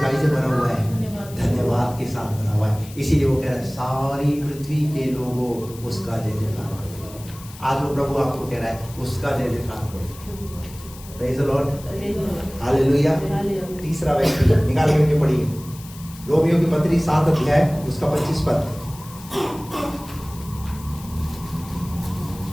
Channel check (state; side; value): noise; left; hiss, 18 dB below the sound